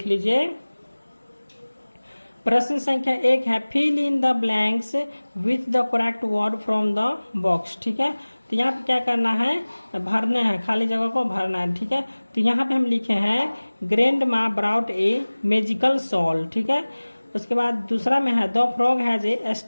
लीजिए, प्रश्न संख्या 1 है fill in the blanks with the correct word from the box. ठीक है, तो यहाँ पे क्या करना है, भरने हैं, खाली जगह को भरना है। ठीक है, तो यहाँ पे हम लिखे हैं ग्रैंड माँ ब्राउट ए मैजिकल सॉल। ठीक है, उसके बाद दूसरा में है the frog has a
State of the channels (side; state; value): both; inverted; correlation -1.00